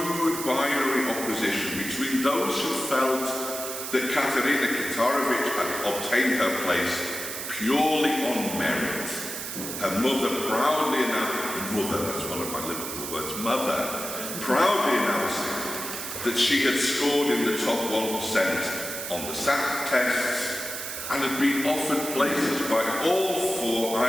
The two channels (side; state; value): right; noise; hiss, 6 dB below the sound